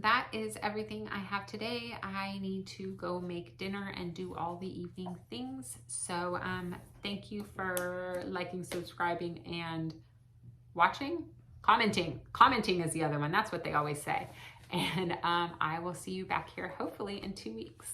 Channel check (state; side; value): identical; both; correlation 1.00